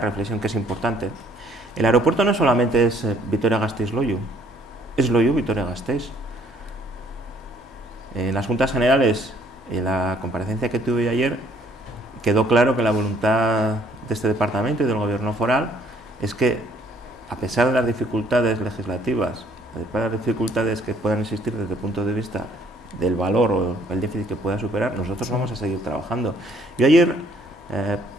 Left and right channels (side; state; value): both; normal; correlation 0.63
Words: que es importante, el aeropuerto no solamente es Vitoria-Gasteiz-Loiu, es Loiu-Vitoria-Gasteiz. En las Juntas Generales, en la comparecencia que tuve ayer, quedó claro que la voluntad de este departamento y del gobierno foral es que, a pesar de las dificultades legislativas, a pesar de las dificultades que puedan existir desde el punto de vista del valor o el déficit que pueda superar, nosotros vamos a seguir trabajando. Yo ayer,